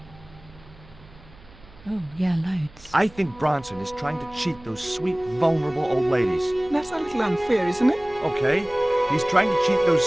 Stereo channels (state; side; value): noise; right; hum, 23 dB below the sound